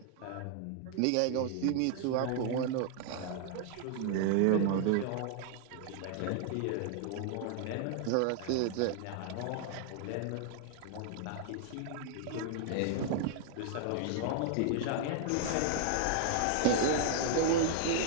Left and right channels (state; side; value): different; both; correlation 0.00